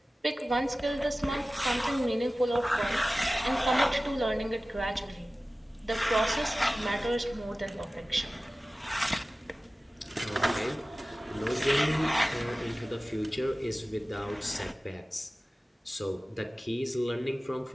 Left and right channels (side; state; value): both; normal; correlation 0.97